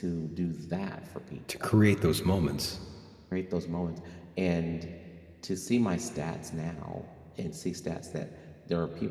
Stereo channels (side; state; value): both; identical; correlation 1.00